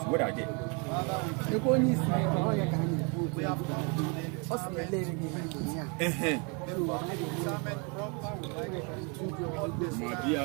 what are they? Before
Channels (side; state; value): left; quieter; 34.1 dB